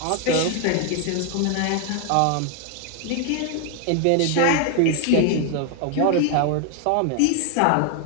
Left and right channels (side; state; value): both; different; correlation 0.00